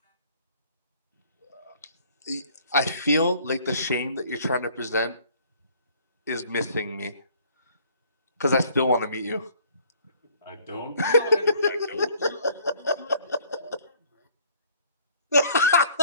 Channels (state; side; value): inverted; both; correlation -0.58